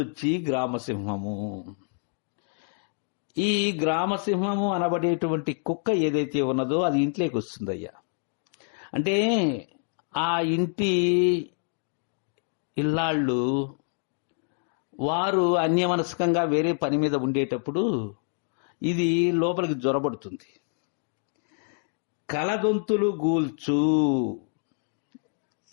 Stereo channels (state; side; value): silent; right; 60 dB below the other